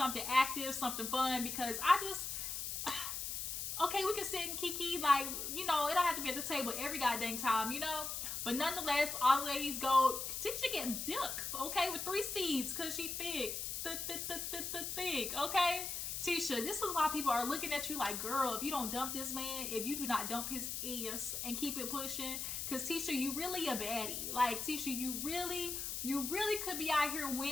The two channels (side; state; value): left; noise; hiss, 3 dB below the sound